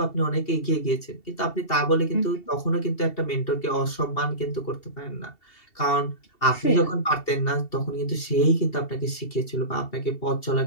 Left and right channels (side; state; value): right; late; 2.7 ms